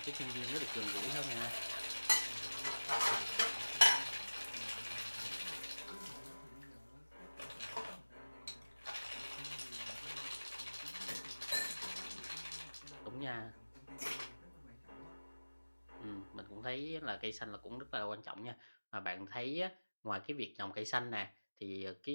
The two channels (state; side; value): inverted; both; correlation -1.00